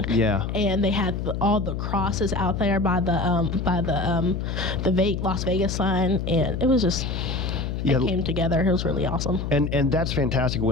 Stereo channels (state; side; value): noise; left; hum, 3 dB below the sound